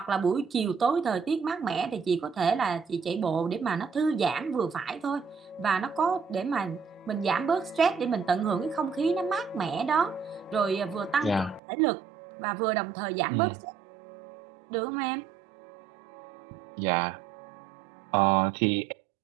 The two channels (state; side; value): drops out; left; at 11.6 s